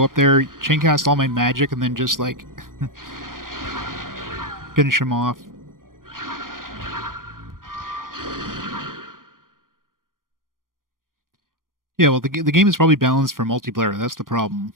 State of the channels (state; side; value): late; left; 0.90 ms